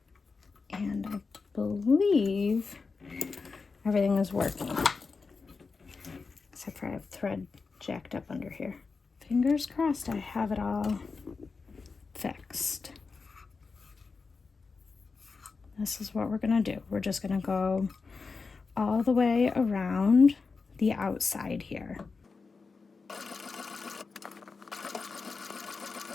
And I believe everything is working. Except for I have thread jacked up under here. Fingers crossed I have it all fixed. This is what we're gonna do. We're just gonna go all the way around the outside here.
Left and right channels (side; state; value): right; quieter; 4.5 dB